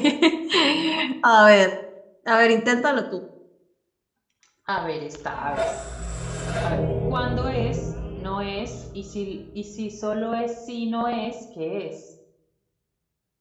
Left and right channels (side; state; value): both; identical; correlation 1.00